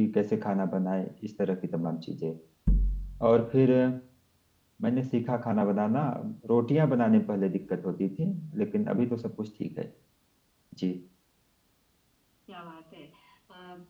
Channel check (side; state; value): both; identical; correlation 1.00